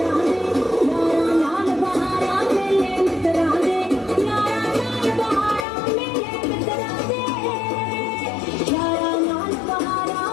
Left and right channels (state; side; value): drops out; right; at 5.7 s